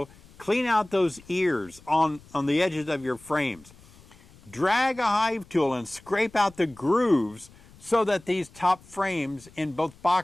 clean out those ears on the edges of your frames. Drag a hive tool and scrape out the grooves so that these top frames in both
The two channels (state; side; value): noise; left; rumble, 25 dB below the sound